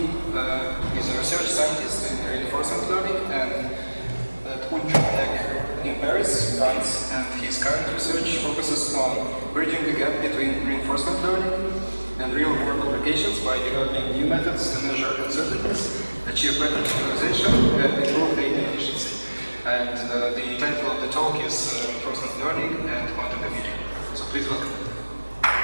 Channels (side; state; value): both; inverted; correlation -1.00